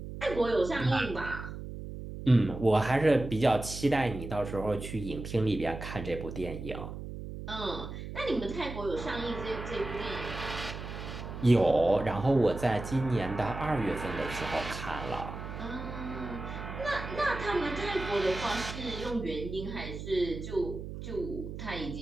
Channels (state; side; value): noise; right; hum, 9 dB below the sound